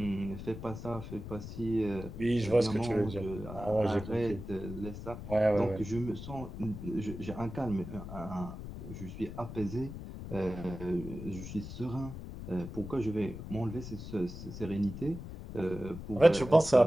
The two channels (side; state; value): left; noise; rumble, 10 dB below the sound